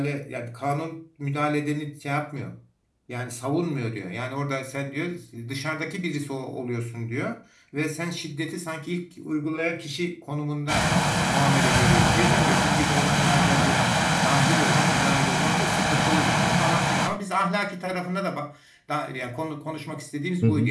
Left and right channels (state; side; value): identical; both; correlation 1.00